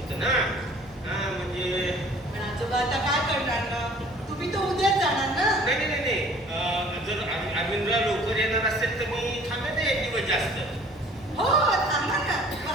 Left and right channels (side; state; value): both; normal; correlation 0.51